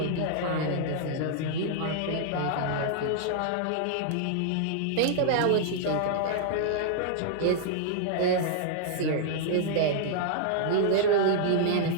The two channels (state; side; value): different; both; correlation -0.01